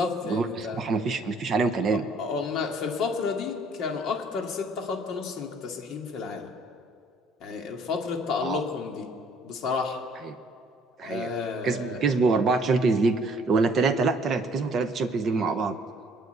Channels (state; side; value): normal; both; correlation 0.59